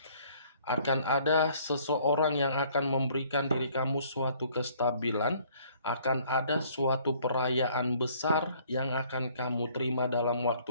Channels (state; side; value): inverted; both; correlation -0.59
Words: Akan ada seseorang yang akan memberikan diri kamu suatu kestabilan, akan ada suatu perayaan besar yang akan kamu terima dalam waktu